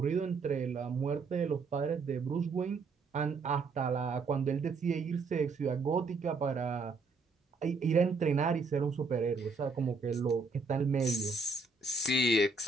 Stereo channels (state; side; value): quieter; left; 4.1 dB